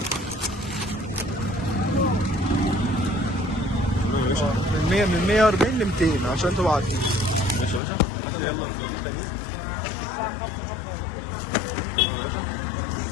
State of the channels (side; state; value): right; drops out; at 7.8 s